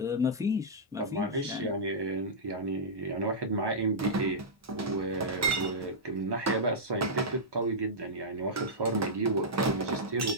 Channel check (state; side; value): normal; both; correlation -0.11